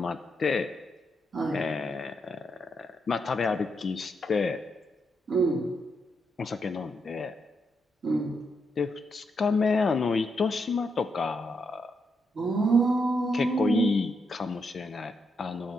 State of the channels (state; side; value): normal; both; correlation 0.81